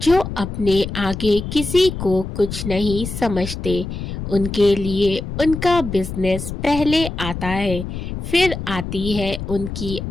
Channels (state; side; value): noise; left; rumble, 7 dB below the sound